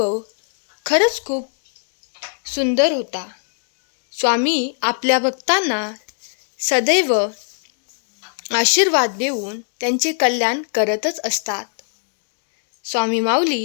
खरंच खूप सुंदर होता. स्वामी आपल्या भक्तांना सदैव आशीर्वाद देऊन त्यांचे कल्याण करतच असतात. स्वामी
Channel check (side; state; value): right; silent; digital silence